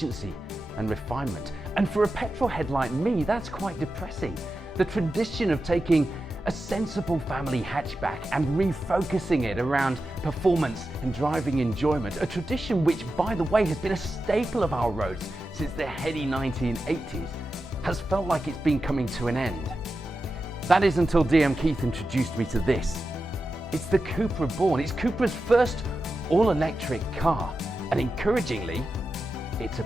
and refinement. And for a petrol head like me, that's quite depressing. The tradition of taking a sensible family hatchback and refocusing it around performance and driving enjoyment, a tradition which, by the way, has been a staple of our roads since the heady 1980s, has felt like it's been coming to an end. That is until DM Keith introduced me to this. It's the Cupra Born. It's Cupra's first all-electric car, and encouragingly, it's a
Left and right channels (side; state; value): both; normal; correlation 0.91